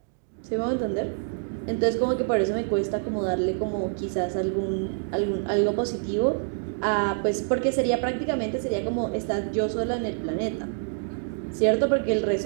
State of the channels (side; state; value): left; silent; digital silence